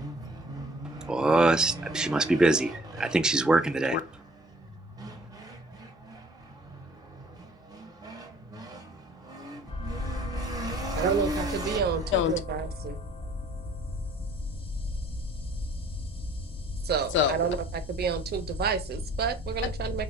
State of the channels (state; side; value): normal; both; correlation 0.54